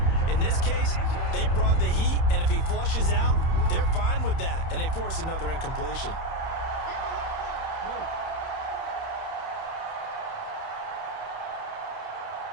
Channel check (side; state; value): right; late; 31 ms